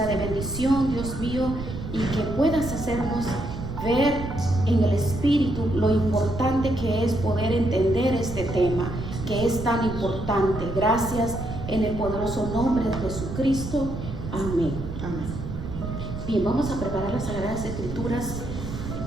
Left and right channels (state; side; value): noise; right; rumble, 7 dB below the sound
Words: de bendición, Dios mío, y que puedas hacernos ver en el Espíritu lo importante que es poder entender este tema, que es tan importante. Gracias en el poderoso nombre de Jesucristo. Amén. Amén. Bien, vamos a preparar las Sagradas Escrituras